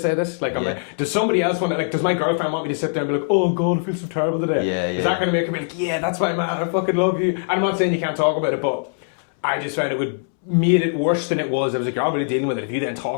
this? Like, I'm like, does somebody else want to, like, does my girlfriend want me to sit there and be like, oh God, I feel so terrible today? Is that going to make her be like, yeah, that's my man, I fucking love you? And I'm not saying you can't talk about it, but I just found it would made it worse than it was. I was like, you're already dealing with it. If you then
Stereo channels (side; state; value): right; silent; 65 dB below the other